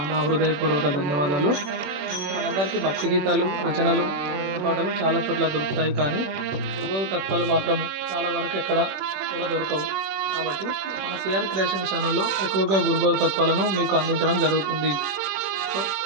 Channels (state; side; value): late; left; 21 ms